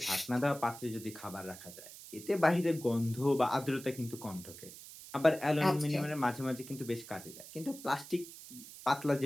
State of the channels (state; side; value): noise; right; hiss, 15 dB below the sound